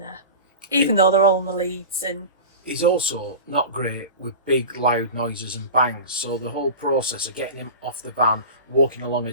even though they're all in the leads. And he's also not great with big loud noises and bangs, so the whole process of getting him off the van, walking along a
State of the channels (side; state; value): both; inverted; correlation -0.32